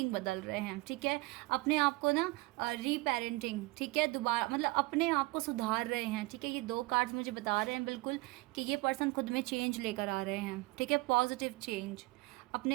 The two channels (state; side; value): quieter; left; 23.1 dB